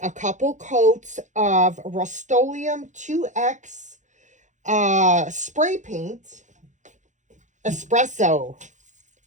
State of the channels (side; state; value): left; late; 0.35 ms